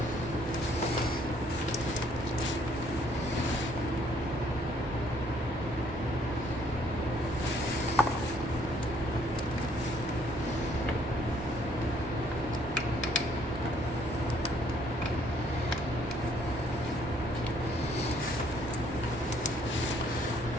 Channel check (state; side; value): normal; both; correlation 0.65